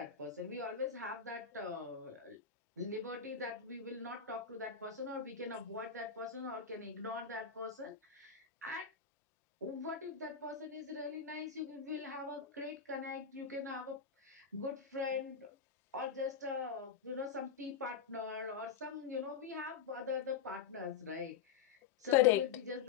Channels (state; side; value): quieter; right; 7.0 dB